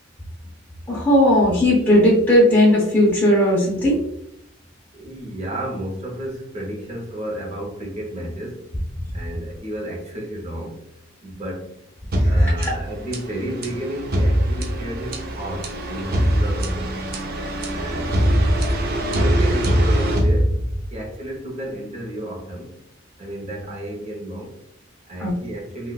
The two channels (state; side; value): normal; both; correlation 0.60